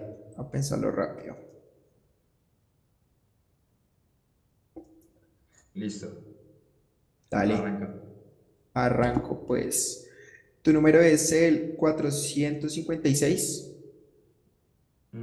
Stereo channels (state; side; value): identical; both; correlation 1.00